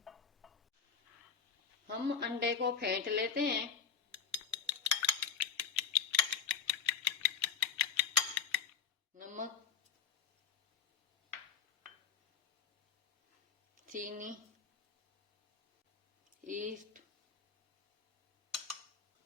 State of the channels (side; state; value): right; quieter; 6.4 dB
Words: हम अंडे को फेंट लेते हैं। नमक, चीनी, ईस्ट,